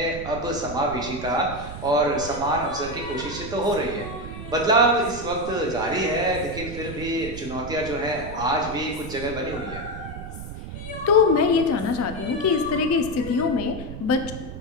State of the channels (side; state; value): right; noise; rumble, 10 dB below the sound